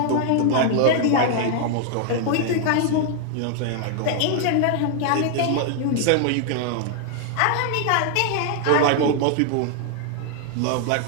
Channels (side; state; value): both; different; correlation 0.00